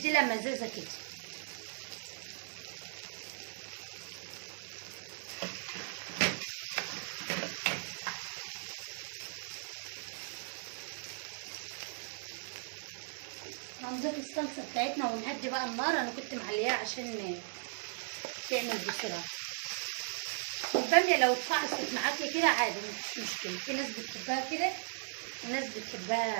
مزازه كده. هنضيف الصلصه بتاعتنا ونهدي بقى النار. انا كنت معلياها عشان تعمل بسرعه. الباميه لو اتفعصت معاكي كده عادي مفيش مشكله، في ناس بتحبها كده وناس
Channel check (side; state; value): left; silent; digital silence